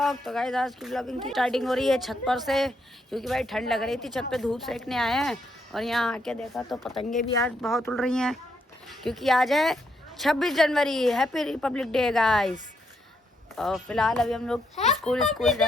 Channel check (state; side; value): normal; both; correlation 0.76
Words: तो guys आज की व्लॉगिंग की स्टार्टिंग हो रही है छत पर से, क्योंकि भाई ठंड लग रही थी। छत पे धूप सेकने आए हैं और यहाँ आके देखा तो पतंगे भी आज बहुत उड़ रही हैं, क्योंकि आज है 26 जनवरी। Happy republic day guys. और फिलहाल अभी हम लोग स्कूल